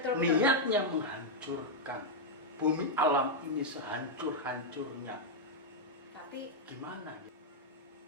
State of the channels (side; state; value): both; normal; correlation -0.02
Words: Niatnya menghancurkan bumi alam ini sehancur-hancurnya. Tapi gimana?